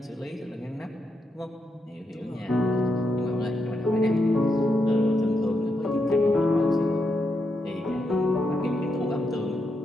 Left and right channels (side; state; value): both; normal; correlation 0.83